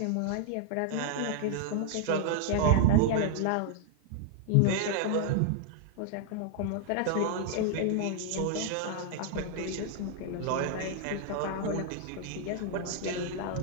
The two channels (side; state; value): both; different; correlation 0.00